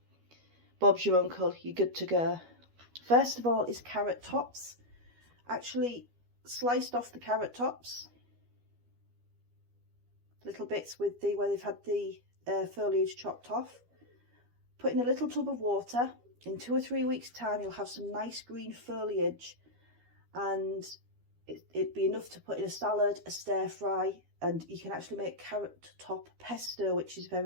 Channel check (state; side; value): late; left; 12 ms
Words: Bob's your uncle, you're good to go. First of all is carrot tops. Actually sliced off the carrot tops, little bits with the where they've had the foliage chopped off. Put in a little tub of water. In 2 or 3 weeks time you'll have some nice green foliage, and it'd be enough to put in a salad, a stir fry, and you can actually make carrot top pesto, which is